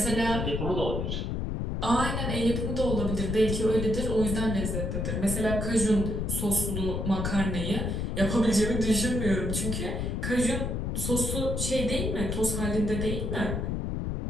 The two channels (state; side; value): noise; left; rumble, 1 dB below the sound